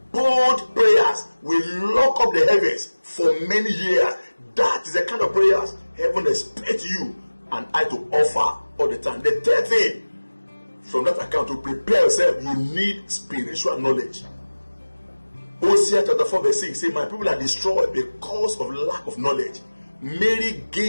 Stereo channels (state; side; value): inverted; both; correlation -1.00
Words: Bold prayers, we lock up the heavens for many years. That is the kind of prayers heaven expects you and I to offer all the time. The third thing from that account, to prepare yourself, you need spiritual knowledge. Hosea chapter 4 verse 6 say, my people are destroyed because of lack of knowledge. Mary